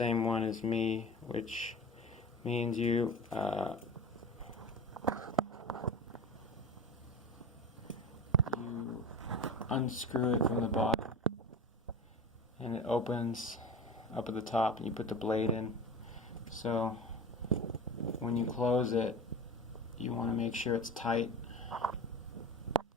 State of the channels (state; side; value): normal; both; correlation 0.32